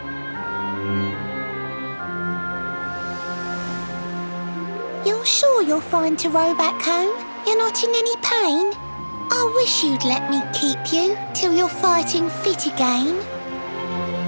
You're sure you're fine to row back home? You're not in any pain? I wish you'd let me keep you till you're fighting fit again.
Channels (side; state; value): both; inverted; correlation -1.00